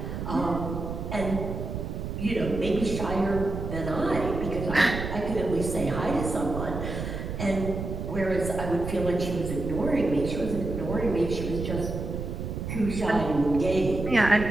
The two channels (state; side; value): noise; right; rumble, 5 dB below the sound